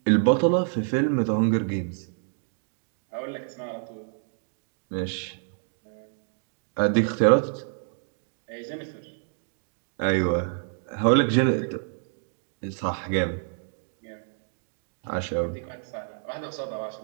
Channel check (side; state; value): left; silent; 59 dB below the other